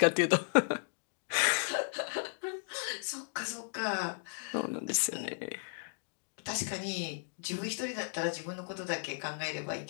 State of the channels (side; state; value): right; silent; digital silence